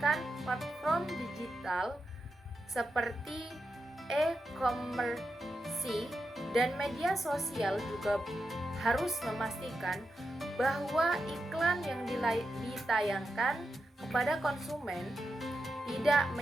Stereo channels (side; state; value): both; normal; correlation 0.88